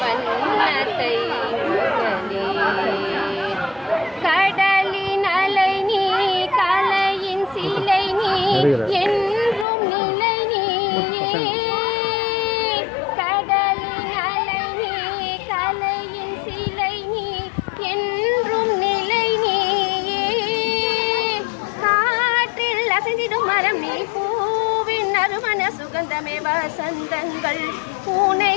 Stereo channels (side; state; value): right; drops out; at 9.7 s